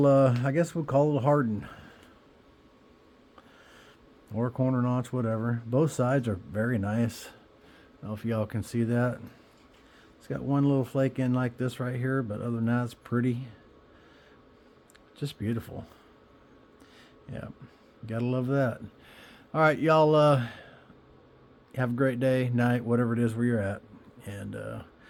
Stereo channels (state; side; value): identical; both; correlation 1.00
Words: I guess we'll call it a Hardin or corner notch, whatever. Both sides are very nice. I don't know if y'all can see that. It's got one little flake in like this right here, but other than that, it's pretty. Just beautiful. Yeah, gotta love that. All right, y'all, have a great day, night, whatever it is where you're at, and